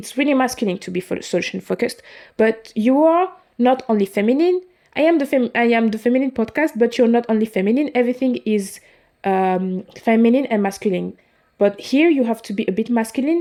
really masculine to be solution focused, but you are not only feminine. I am the feminine podcast, but you're not only feminine. Everything is feminine and masculine. But here you have to be a bit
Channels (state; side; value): identical; both; correlation 1.00